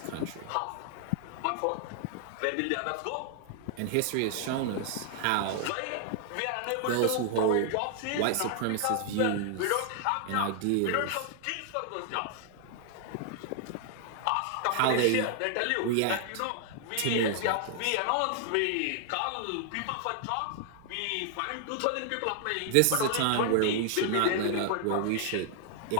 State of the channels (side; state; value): both; different; correlation 0.00